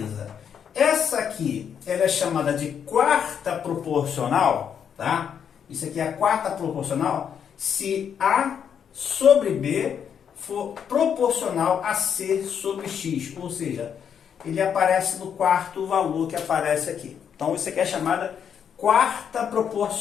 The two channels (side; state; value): right; quieter; 8.0 dB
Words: Essa aqui, ela é chamada de quarta proporcional, tá? Isso aqui é a quarta proporcional se A sobre B for proporcional a C sobre X, ou seja, ele aparece no quarto valor que aparece aqui. Então isso aqui é chamada quarta